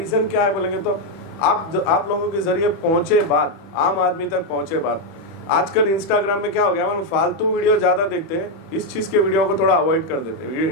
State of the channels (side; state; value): right; late; 31 ms